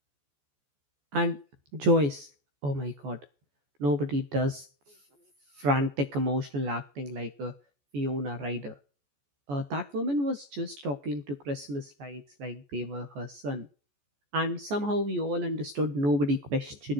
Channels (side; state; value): left; late; 14 ms